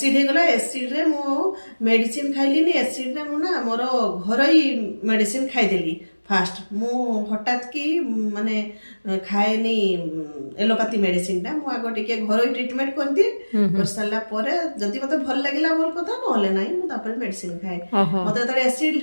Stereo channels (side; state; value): both; inverted; correlation -1.00